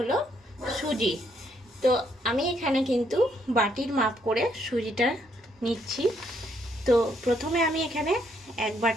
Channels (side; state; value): both; normal; correlation 0.72